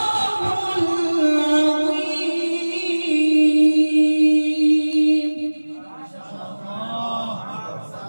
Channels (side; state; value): both; inverted; correlation -1.00